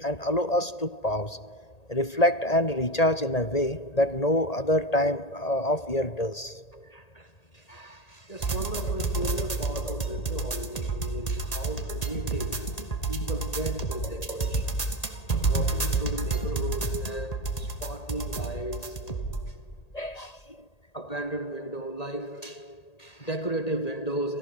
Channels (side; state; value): right; late; 1.8 ms